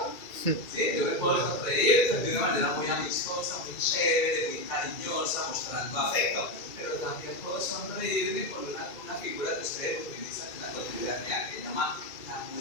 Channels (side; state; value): right; late; 2.3 ms